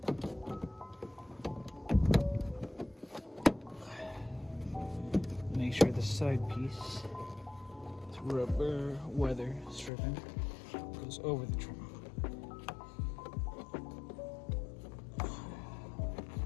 Make sure the side piece, this rubber weather stripping, goes over the trim.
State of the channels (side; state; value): right; drops out; at 9.9 s